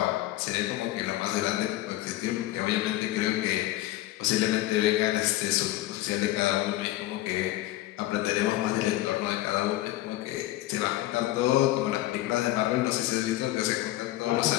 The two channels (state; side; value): quieter; right; 16.1 dB